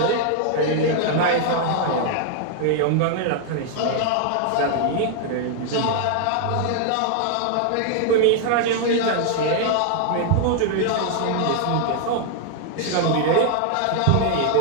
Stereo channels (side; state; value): both; different; correlation 0.00